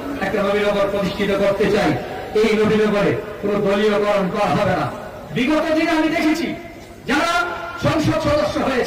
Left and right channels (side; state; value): both; identical; correlation 1.00